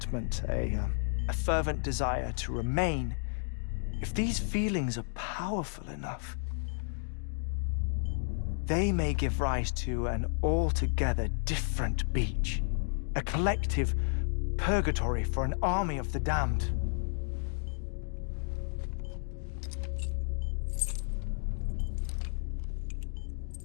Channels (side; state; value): right; silent; digital silence